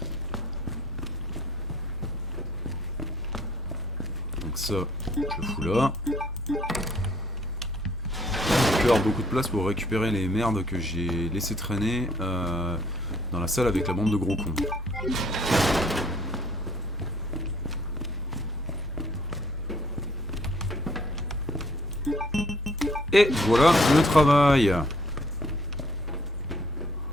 Donc ça, je le fous là. Il peut y avoir beaucoup de place pour récupérer les merdes que j'ai laissé traîner dans la salle avec la bande de gros cons. Et voilà le travail.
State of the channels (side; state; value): both; normal; correlation 0.61